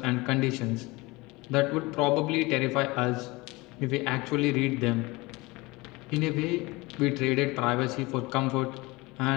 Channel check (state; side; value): quieter; right; 23.0 dB